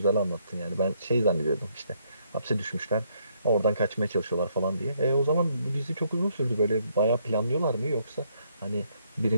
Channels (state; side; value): inverted; both; correlation -0.71